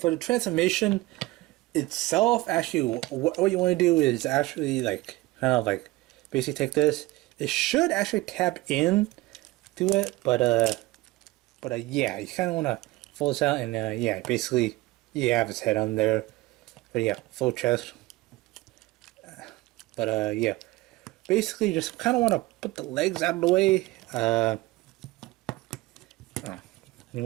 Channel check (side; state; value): left; quieter; 19.7 dB